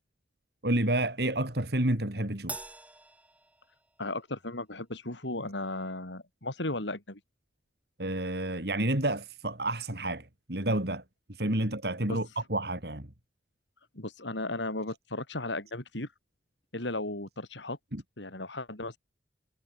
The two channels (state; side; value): normal; both; correlation 0.24